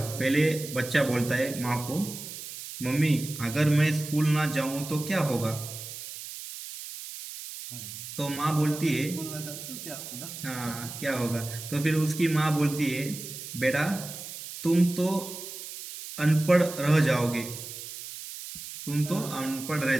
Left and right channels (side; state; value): right; noise; hiss, 10 dB below the sound